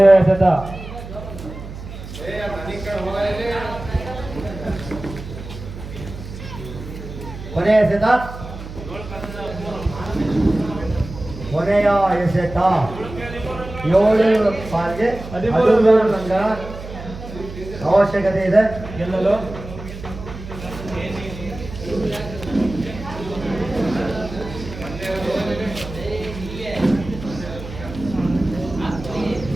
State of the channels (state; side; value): noise; right; hum, 12 dB below the sound